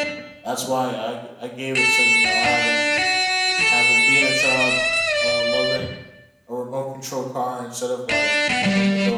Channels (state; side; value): identical; both; correlation 1.00